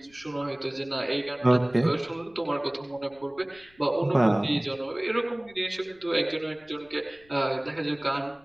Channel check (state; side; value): noise; left; rumble, 30 dB below the sound